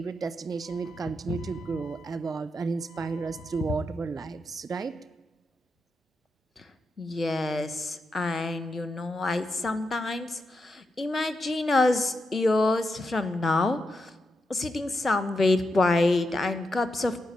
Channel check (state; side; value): normal; both; correlation 0.86